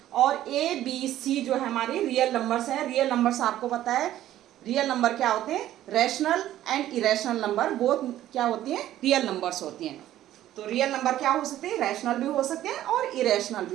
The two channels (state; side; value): quieter; left; 13.1 dB